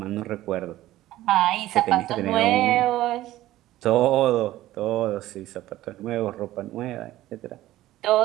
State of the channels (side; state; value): left; quieter; 15.3 dB